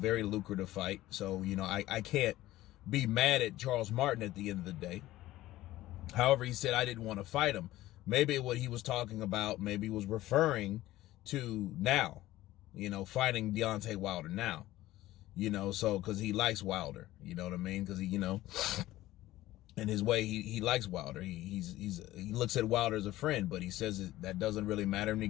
lucrative fight. So, I can't be mad at Charles Martin at the end of the day. However, he said, I didn't want to fight him. Maybe what he was talking about, maybe he was referring to now, fighting Deontay Wilder now, so because he likes Wilder, you know what I mean? Because he, in his way, he likes Wilder. He looks at Wilder as a friend, but he says that doesn't really matter when he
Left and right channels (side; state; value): right; quieter; 15.9 dB